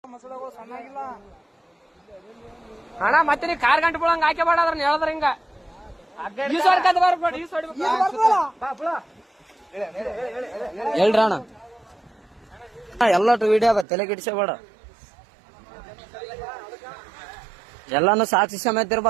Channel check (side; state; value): left; drops out; at 13.9 s